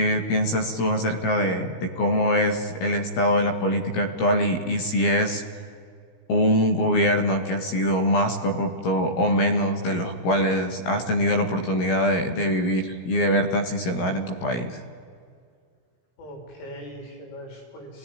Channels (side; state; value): right; late; 17 ms